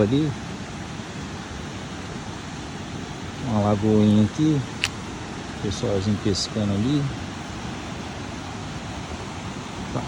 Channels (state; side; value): identical; both; correlation 1.00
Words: ali. Uma lagoinha aqui. Pessoalzinho pescando ali. Tá